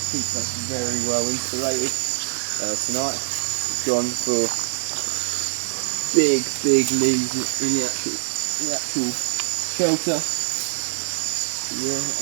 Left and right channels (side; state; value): left; silent; 63 dB below the other